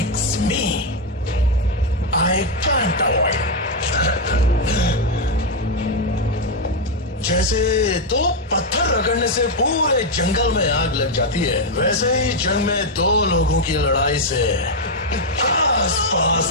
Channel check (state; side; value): normal; both; correlation 0.02